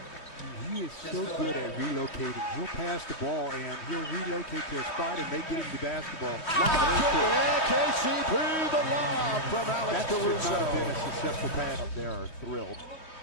He is so good at relocating. He'll pass the ball and he'll relocate to a spot and they get him the basketball. KCP, the lob from Alex Caruso. That should not have been a successful pass. Up there are thrilled.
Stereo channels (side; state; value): right; late; 3.1 ms